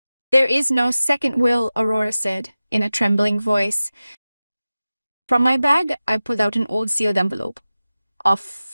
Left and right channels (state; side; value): inverted; both; correlation -0.96